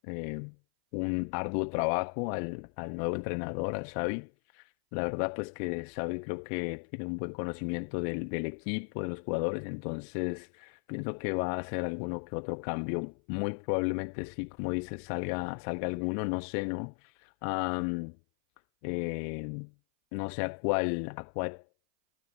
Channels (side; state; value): right; silent; 54 dB below the other